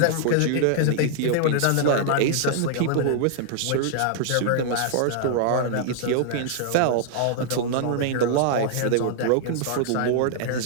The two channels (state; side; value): different; both; correlation -0.01